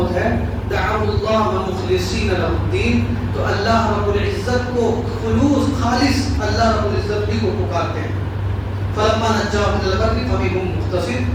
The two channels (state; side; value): identical; both; correlation 1.00